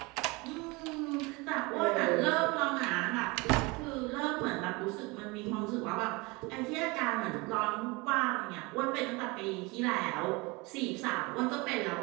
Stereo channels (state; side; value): quieter; left; 25.5 dB